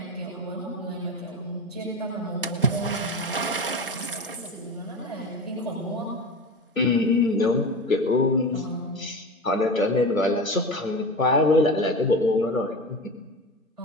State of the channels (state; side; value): normal; both; correlation 0.27